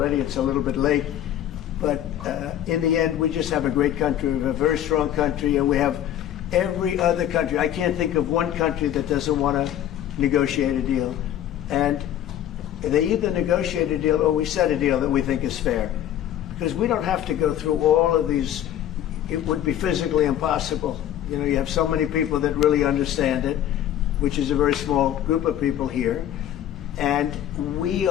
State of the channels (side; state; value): right; quieter; 11.3 dB